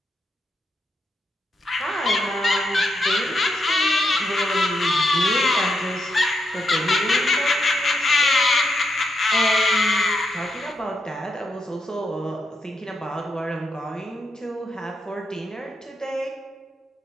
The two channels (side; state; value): both; normal; correlation 0.80